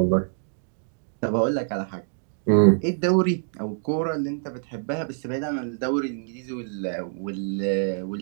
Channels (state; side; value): silent; left; digital silence